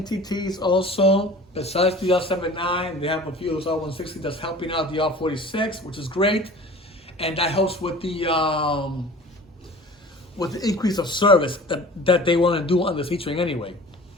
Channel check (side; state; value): both; normal; correlation 0.43